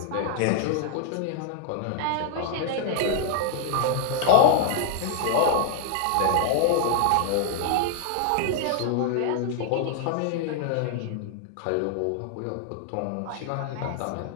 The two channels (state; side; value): different; both; correlation 0.00